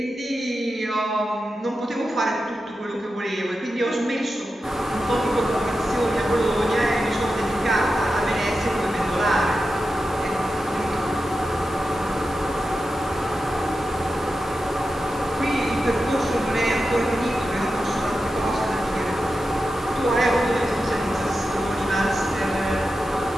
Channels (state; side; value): normal; both; correlation 0.91